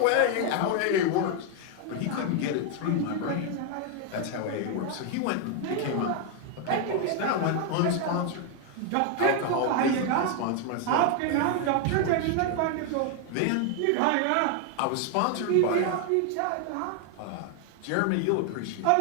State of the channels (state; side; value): different; both; correlation 0.00